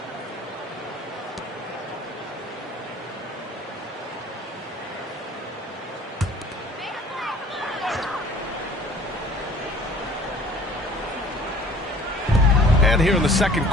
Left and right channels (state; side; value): normal; both; correlation 0.50